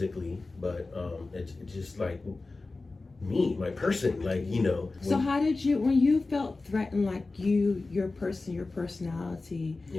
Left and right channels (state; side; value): quieter; right; 3.5 dB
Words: but it's just like me, my person, like, So how did you, when you felt threatened, like your personality,